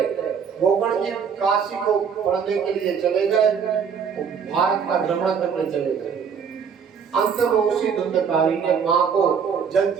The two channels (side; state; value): left; quieter; 6.7 dB